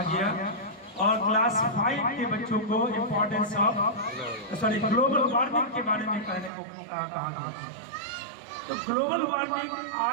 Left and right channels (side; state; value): left; drops out; at 6.5 s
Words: गया और क्लास 5 के बच्चों को इम्पोर्टेंस ऑफ ग्लोबल वार्मिंग के बारे में कहने को कहा गया। तो ग्लोबल वार्मिंग